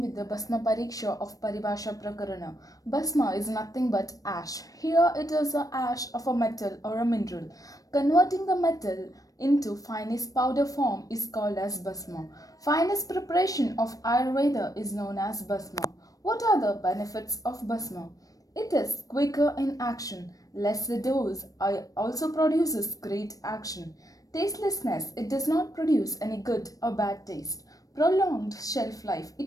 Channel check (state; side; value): late; right; 0.17 ms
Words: with the Bhasma Pariksha of Paribhasha Prakarana. Bhasma is nothing but ash. Here it is a ash of a metal or a mineral. Converting the metal into finest powder form is called as Bhasma. Finest preparation of Ayurveda is known as Bhasma. What are the benefits of Bhasma? It is quicker in action, less the dose, also produces great action. Tastelessness, it does not produce any good or bad taste. Prolonged shelf life,